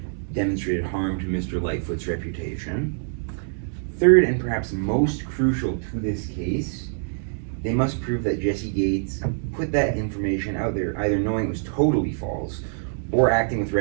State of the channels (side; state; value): left; silent; digital silence